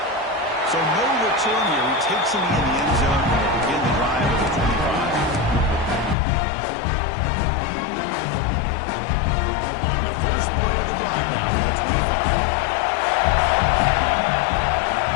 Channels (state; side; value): drops out; right; at 6.2 s